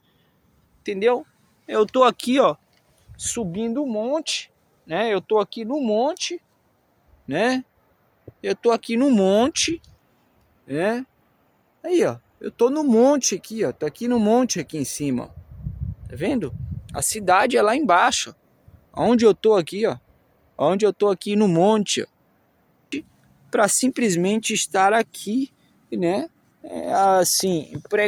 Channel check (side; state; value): both; identical; correlation 1.00